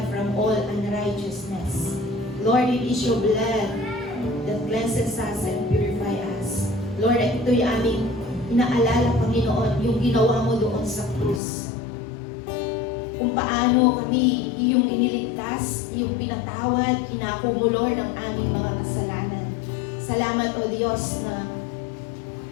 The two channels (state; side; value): drops out; right; at 11.4 s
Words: from all unrighteousness. Lord, it is your blood that cleanses us and purify us. Lord, ito'y aming inaalala, Panginoon, yung ginawa mo doon sa krus. Kung paano kami iyong iniligtas, iyong pinatawad, kinako mo, Lord, ang aming mga kasalanan. Salamat, O Diyos, na